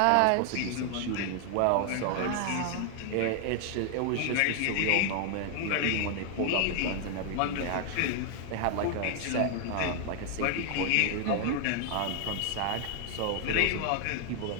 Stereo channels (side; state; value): both; different; correlation 0.00